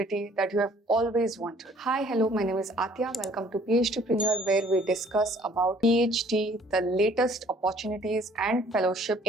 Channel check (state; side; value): normal; both; correlation 0.57